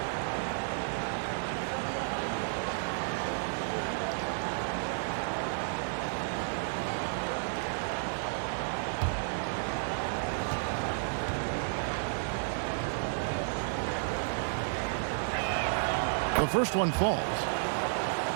The first one falls.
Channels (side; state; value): left; silent; 56 dB below the other